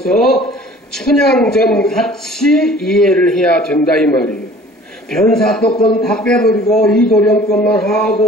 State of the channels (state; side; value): normal; both; correlation 0.49